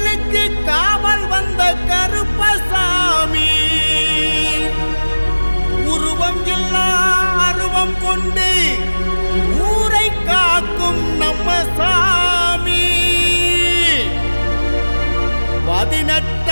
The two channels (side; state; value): both; inverted; correlation -1.00